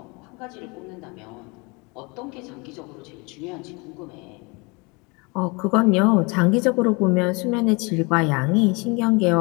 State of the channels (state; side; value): quieter; right; 28.3 dB